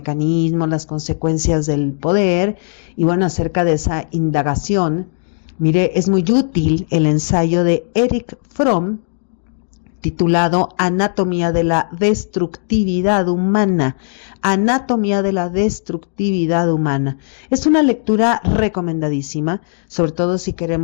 las consecuencias del poder. Y bueno, acerca de esa indagación, mire, es muy útil el ensayo de Erich Fromm titulado Anatomía de la destructividad humana. Anatomía de la destructividad humana. Es una lectura recomendadísima, sobre todo si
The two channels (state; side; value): silent; right; digital silence